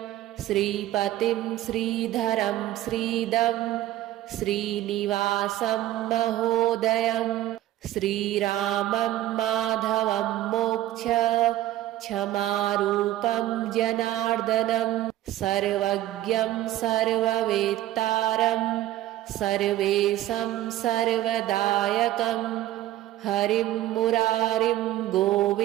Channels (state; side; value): quieter; left; 14.3 dB